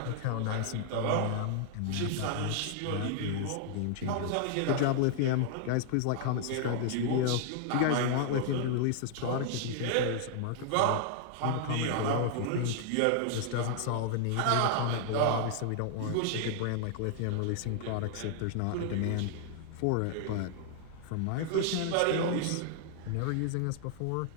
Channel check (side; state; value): both; different; correlation -0.01